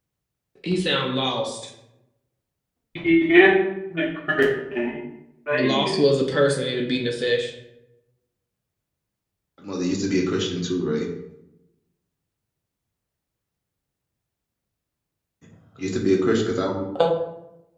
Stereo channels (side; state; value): both; identical; correlation 1.00